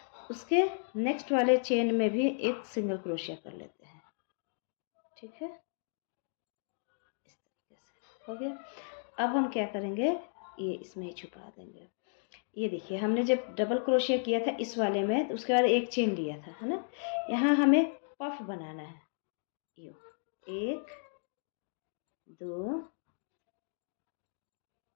उसके नेक्स्ट वाले चेन में भी एक सिंगल क्रोशिया कर लेते हैं, ठीक है। इस तरीके से हो गया। अब हम क्या करेंगे, ये इसमें ही छुपा देंगे। ये देखिए हमने जब डबल क्रोशिया किया था इस वाले में, तो उसके बाद एक चेन लिया था, है ना। यहाँ हमें पफ बनाना है, यो 1 2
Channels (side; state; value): right; silent; digital silence